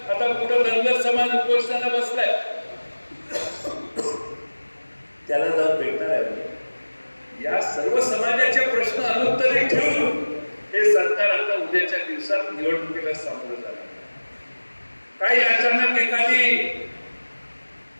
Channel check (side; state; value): both; inverted; correlation -1.00